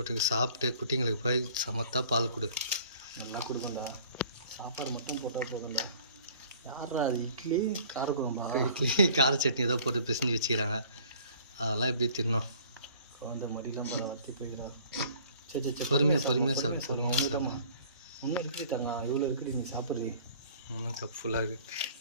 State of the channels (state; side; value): inverted; both; correlation -0.52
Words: சாப்பிட்டு குட்டிங்களுக்கு போய் சமத்தா பால் கொடு. நல்லா கொடுக்கண்டா. சாப்பாடு மட்டும் போட்டால் போகண்டா. யாரா அது இட்லி காரக்குழம்பா? இட்லி கார சட்னி ஏதோ போட்டு பிசைஞ்சு வச்சுக்கிறாங்க. அதெல்லாம் எப்படி தின்னோம். அந்த மடியெல்லாம் வத்தி போய்கிறா. சரி பொறுமையாக சாப்பிடு. ஒன்றும் இருக்குது தாங்க, இவ்வளோ இருக்குது. நீ சாப்பிட்றீ. கப் ஃபுல்லாக இருக்குது.